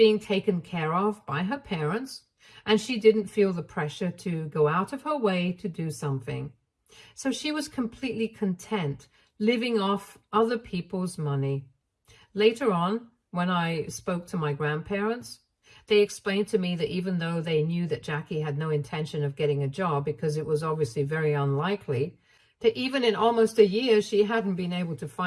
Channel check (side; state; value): both; identical; correlation 1.00